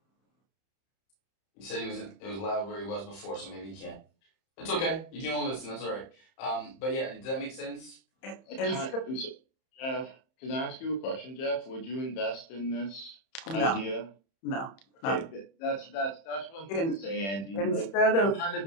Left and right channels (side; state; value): right; late; 31 ms